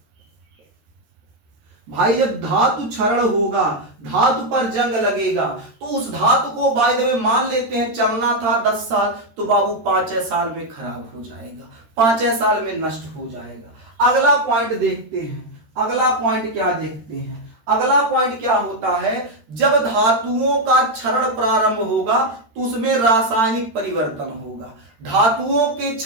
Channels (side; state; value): left; late; 13 ms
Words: भाई जब धातु क्षरण होगा, धातु पर जंग लगेगा, तो उस धातु को बाय द वे मान लेते हैं चलना था 10 साल, तो बाबू 5 साल में खराब हो जाएगा, 5 साल में नष्ट हो जाएगा। अगला पॉइंट देखते हैं, अगला पॉइंट क्या देखते हैं, अगला पॉइंट क्या होता है, जब धातुओं का क्षरण प्रारंभ होगा तो उसमें रासायनिक परिवर्तन होगा। धातुओं के